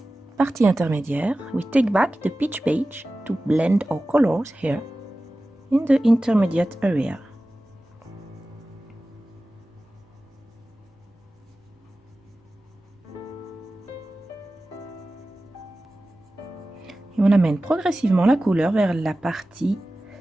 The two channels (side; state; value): both; normal; correlation 0.96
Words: partie intermédiaire, we take back the pitch beige to blend our colors here in the intermediate area. Et on amène progressivement la couleur vers la partie